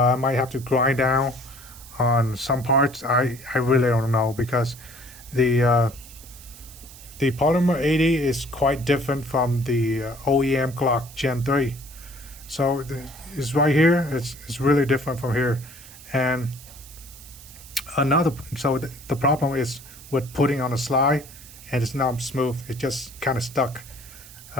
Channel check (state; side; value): noise; right; hiss, 18 dB below the sound